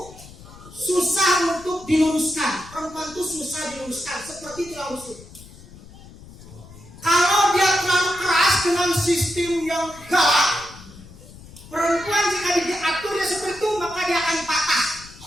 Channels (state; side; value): noise; left; rumble, 19 dB below the sound